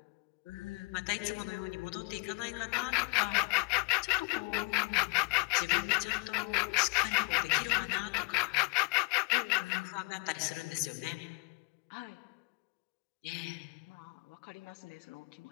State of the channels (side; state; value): right; quieter; 28.2 dB